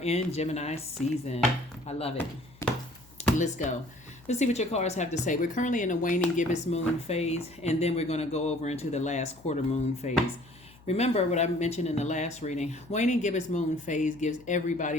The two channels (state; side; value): noise; left; hum, 25 dB below the sound